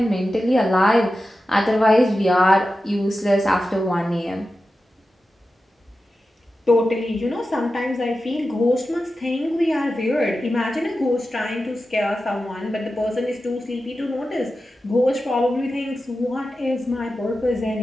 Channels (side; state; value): both; normal; correlation 0.92